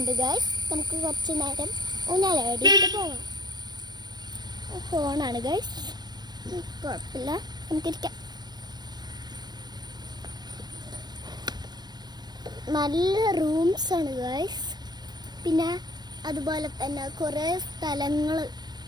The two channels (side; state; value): left; late; 0.20 ms